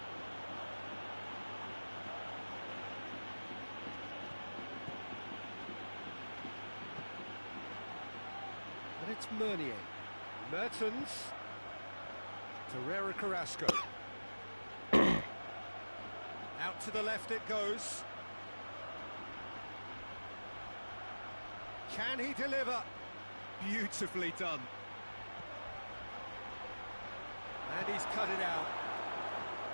And it's Meunier. Mertens. Torreira Carrasco. Out to the left it goes. Can he deliver? Beautifully done. And he's cut it out.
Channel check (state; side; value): inverted; both; correlation -1.00